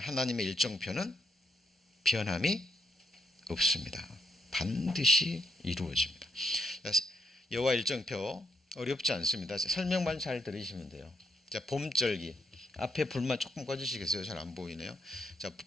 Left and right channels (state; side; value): normal; both; correlation 0.77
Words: 하나님의 일정표는 변함이 없습니다. 반드시 이루어집니다. 여호와 일정표 어렵지 않습니다. 설명만 잘 들으시면 돼요. 자, 봄절기 앞에 불만 조금 꺼주시겠어요? 잘 안 보이네요. 자,